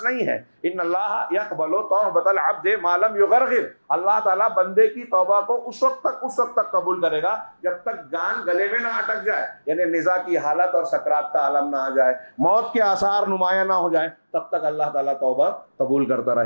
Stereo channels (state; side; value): inverted; both; correlation -1.00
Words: نہیں ہے۔ ان اللہ یقبل توبۃ العبد ما لم یغرغر، اللہ تعالیٰ بندے کی توبہ کو اس وقت تک قبول کرے گا جب تک جان گلے میں نہ اٹک جائے، یعنی نزا کی حالت اور سکرات کا عالم نہ آ جائے، موت کے آثار نمایاں نہ ہو جائیں، تب تک اللہ تعالیٰ توبہ قبول کرتا